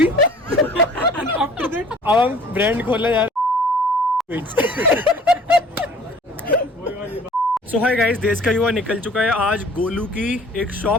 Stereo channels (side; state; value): both; normal; correlation 0.50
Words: And after that, अब हम ब्रांड खोलने जा रहे सो हाय गाइस, देश का युवा निकल चुका है। आज गोलू की एक